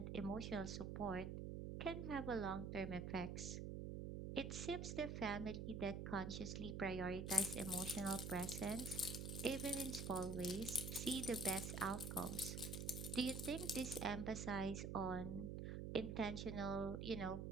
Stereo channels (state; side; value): noise; right; hum, 4 dB below the sound